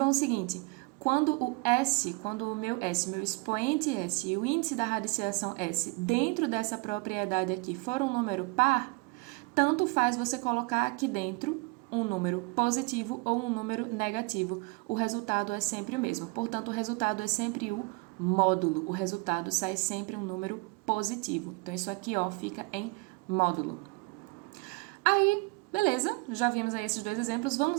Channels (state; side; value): quieter; left; 27.8 dB